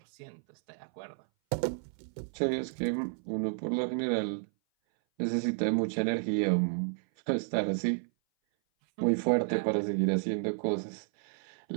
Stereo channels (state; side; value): silent; left; 57 dB below the other